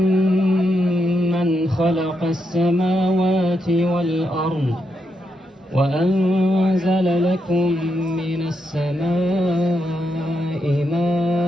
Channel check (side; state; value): both; normal; correlation 0.82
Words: خلق السماوات والأرض وأنزل لكم من السماء